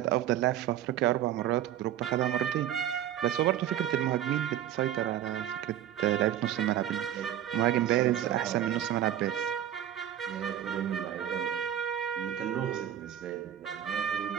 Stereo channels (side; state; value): left; quieter; 11.2 dB